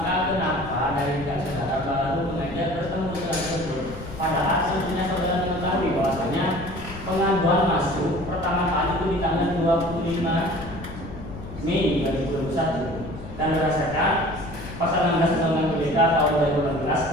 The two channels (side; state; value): left; noise; rumble, 13 dB below the sound